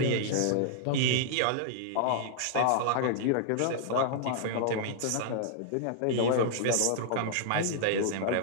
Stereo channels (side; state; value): both; different; correlation -0.01